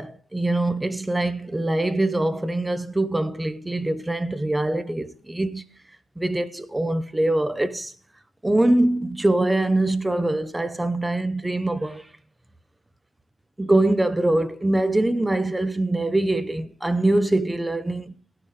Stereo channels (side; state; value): both; normal; correlation 0.97